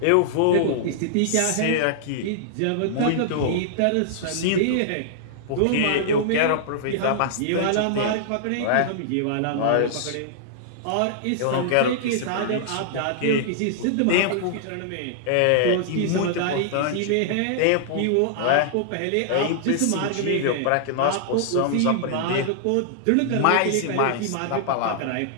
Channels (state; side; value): different; both; correlation -0.01